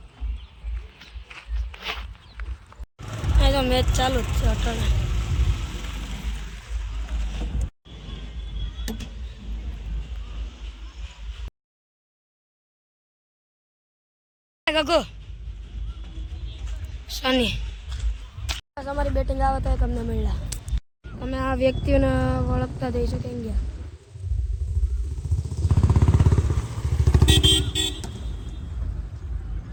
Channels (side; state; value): both; identical; correlation 1.00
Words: તો મેચ ચાલુ જ છે અટણે. ગગો સની અમારી બેટિંગ આવે તો તમને મળ્યા. તમે આ વ્યક્તિઓને ઓળખતા થઈ શકે ગયા.